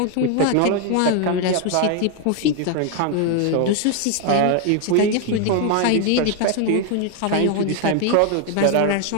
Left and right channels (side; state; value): both; different; correlation 0.00